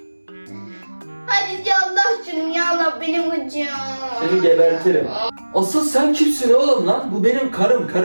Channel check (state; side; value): inverted; both; correlation -1.00